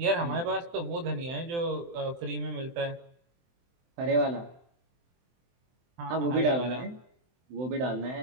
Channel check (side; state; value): left; late; 23 ms